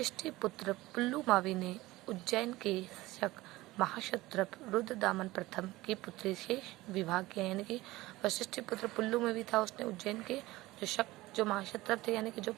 पुत्र पुल्लुमावी ने उज्जैन के शक महाक्षत्रप रुद्रदामन प्रथम की पुत्री से विवाह किया। यानी कि वशिष्ठी पुत्र पुल्लुमावी था, उसने उज्जैन के जो महाक्षत्रप थे यानी कि जो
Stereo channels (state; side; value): quieter; left; 18.7 dB